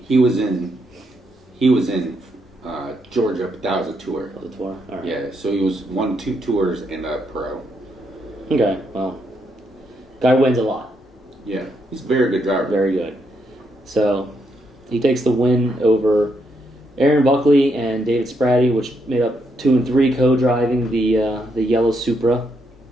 was in Georgia, but that was a tour. That was a tour? All right. Yeah, so he won 2 tours and a pro. Okay, well. Guy wins a lot. Yeah, he's a very good driver. Very good. So he takes the win over Aaron Buckley and David Spratty, which made up 2 and 3 co-driving the yellow Supra.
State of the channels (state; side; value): normal; both; correlation 0.78